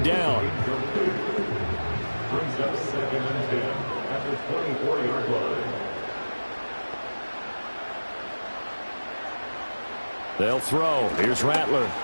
down. Brings up 2nd and 10 at the 24-yard line. They'll throw. Here's Rattler.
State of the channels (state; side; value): inverted; both; correlation -1.00